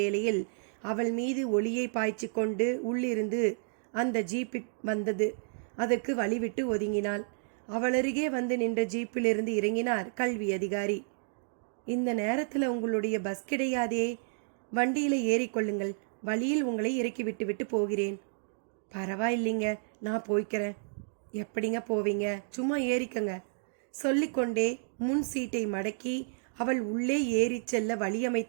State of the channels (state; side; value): silent; left; digital silence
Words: அவள் மீது ஒளியை பாய்ச்சி கொண்டு உள்ளிருந்து அந்த ஜீப் வந்தது. அதற்கு வழிவிட்டு ஒதுங்கினாள். அவளருகே வந்து நின்ற ஜீப்பிலிருந்து இறங்கினார் கல்வி அதிகாரி. இந்த நேரத்தில் உங்களுடைய பஸ் கிடையாதே, வண்டியில் ஏறிக்கொள்ளுங்கள், வழியில் உங்களை இறக்கி விட்டு போகிறேன். பரவாயில்லைங்க, நான் போய்க்கிறேன். எப்படிங்க போவீங்க, சும்மா ஏறிக்கங்க சொல்லிக்கொண்டே முன் சீட்டை மடக்கி அவள் உள்ளே ஏறி செல்ல